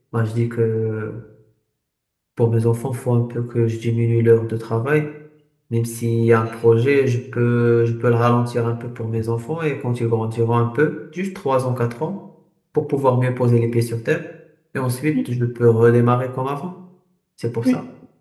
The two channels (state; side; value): identical; both; correlation 1.00